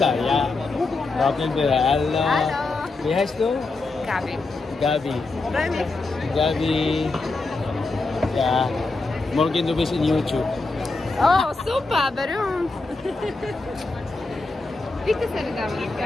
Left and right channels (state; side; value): quieter; right; 3.5 dB